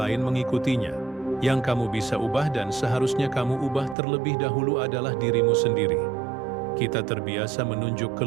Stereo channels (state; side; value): drops out; left; at 4.0 s